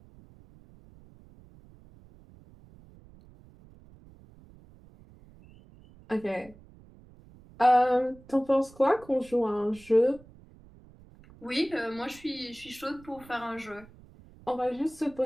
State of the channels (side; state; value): right; noise; rumble, 23 dB below the sound